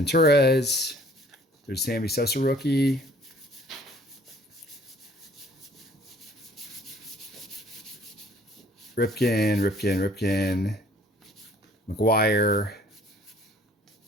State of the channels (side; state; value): both; normal; correlation 0.56